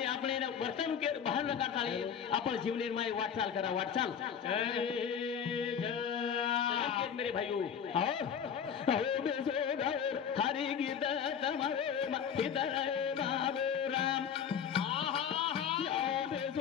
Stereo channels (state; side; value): quieter; right; 7.8 dB